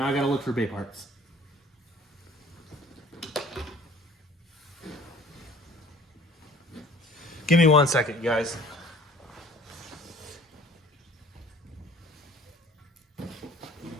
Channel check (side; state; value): both; normal; correlation 0.51